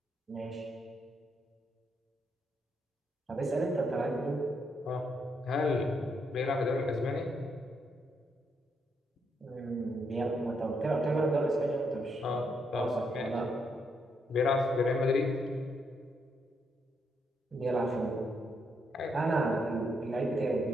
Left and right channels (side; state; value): both; normal; correlation 0.77